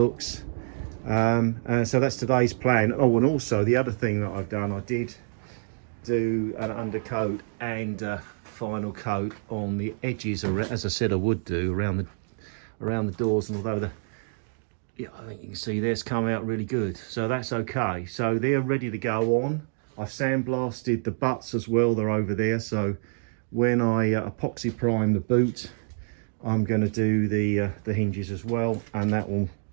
So that's today's plan. Oh, and also the other thing that I've done, I did do an undercoat and final coat on the edges, as I said I would do, around the doors. And although I think you can see this come out really good, so that's okay. So they're ready to go on. I've sandblasted the butts as well, they're over there. So when I epoxy prime the boot, I'm going to do the hinges as well, and that will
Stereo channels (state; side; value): silent; left; digital silence